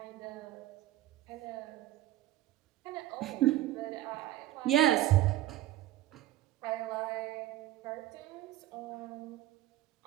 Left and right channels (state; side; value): quieter; left; 14.4 dB